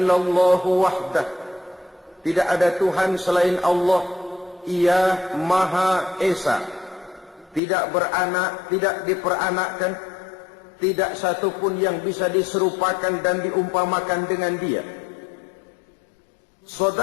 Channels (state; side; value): drops out; right; at 7.6 s